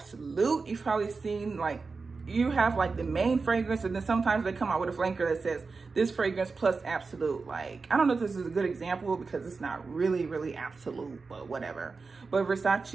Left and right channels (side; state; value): left; quieter; 4.4 dB